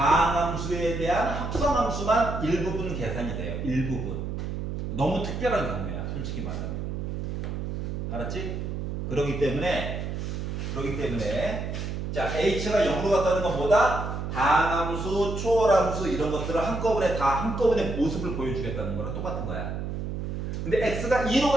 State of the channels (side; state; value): right; noise; hum, 4 dB below the sound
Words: 대한 합성함수만 일부분 계산이 돼요. 일부분. 너무 특별한 경우야. 솔직히 말하면. 알았지? 그러기 때문에 자 h가 0으로 갔다는 건 뭐다? 다항함수, 초월함수 이런 것들을 한꺼번에 모습을 보여주겠다는 거랑 똑같은 거야. 근데 x가 2로